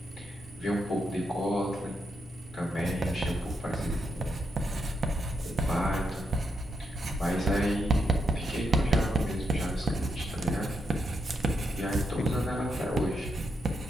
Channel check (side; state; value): both; normal; correlation 0.82